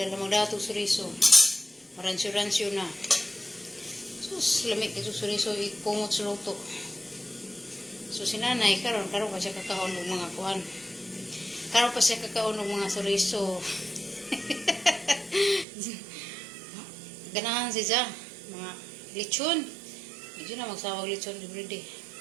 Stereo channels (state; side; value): drops out; left; at 15.7 s